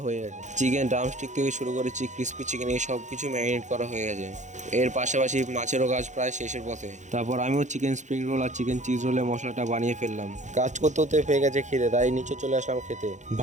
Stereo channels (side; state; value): left; late; 0.35 ms